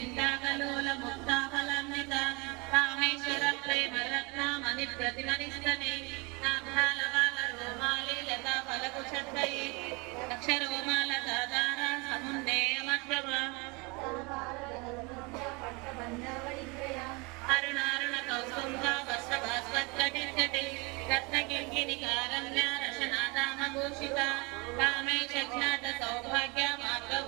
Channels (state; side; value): quieter; left; 28.1 dB